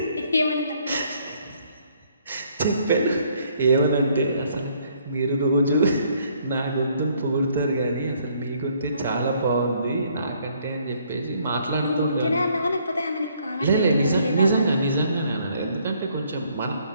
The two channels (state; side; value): inverted; both; correlation -0.66